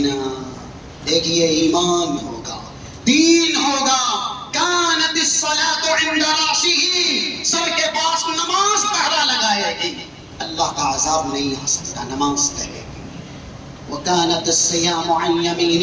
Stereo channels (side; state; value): both; identical; correlation 1.00